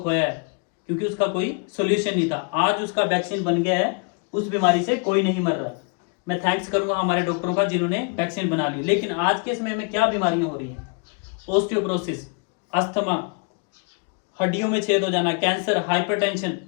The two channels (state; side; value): quieter; right; 35.6 dB